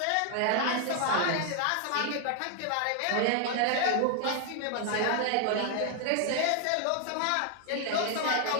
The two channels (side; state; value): both; different; correlation 0.00